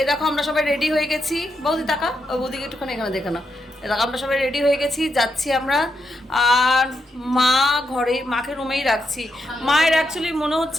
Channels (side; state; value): both; normal; correlation 0.83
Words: দেখো আমরা সবাই রেডি হয়ে গেছি। বৌদি টাকা, ও বৌদিকে একটুখানি এখানে দেখে নাও। এ দেখো আমরা সবাই রেডি হয়ে গেছি, যাচ্ছি আমরা। আর মা ঘরে, মাকে রুমেই রাখছি। মায়ের অ্যাকচুয়ালি মনে